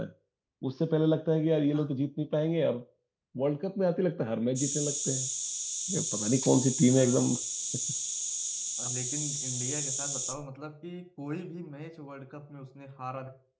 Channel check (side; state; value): both; identical; correlation 1.00